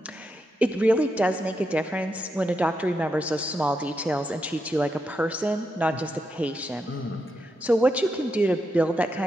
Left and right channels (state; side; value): normal; both; correlation 0.84